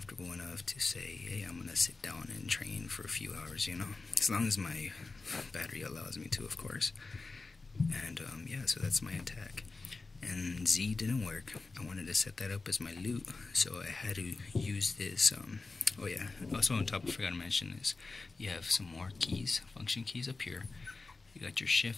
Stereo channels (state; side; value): quieter; right; 3.8 dB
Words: enough to say, hey, I'm gonna sit down and train for a few hours, as long as my battery allows me to, of course. And yeah, so that's my attack. And Z didn't work. I wanted to set that up as my loot, so I had to use this. Oh yeah, also on top, I forgot to mention this. You have some more keys, function keys up here. You got your